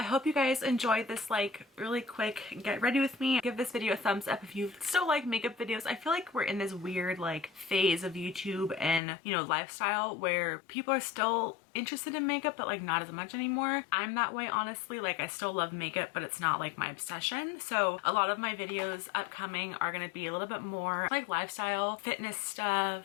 hope you guys enjoyed this like really quick get ready with me. Give this video a thumbs up if you still like makeup videos. I feel like we're in this weird like phase of YouTube and, you know, lifestyle where people are still interested in makeup, but like not as much anymore. I'm that way, honestly. Like I still love makeup, but it's not like my obsession. So a lot of my videos upcoming are going to be a little bit more like lifestyle, fitness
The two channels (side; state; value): right; drops out; at 9.0 s